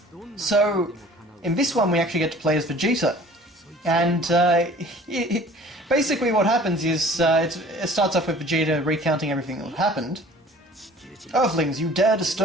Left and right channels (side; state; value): both; normal; correlation 0.49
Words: So in this one we actually get to play as Vegeta. And basically what happens is, it starts off with Vegeta recounting everything that happened. Earthlings, you dare